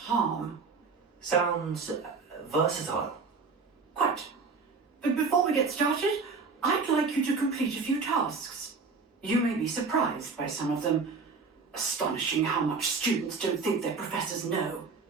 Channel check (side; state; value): left; quieter; 4.6 dB